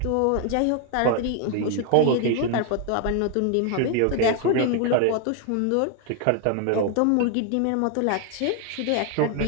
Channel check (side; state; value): both; different; correlation 0.01